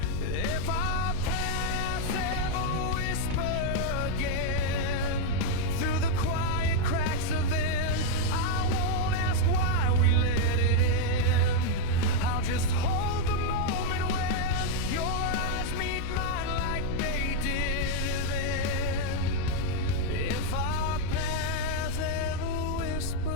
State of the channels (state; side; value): different; both; correlation 0.00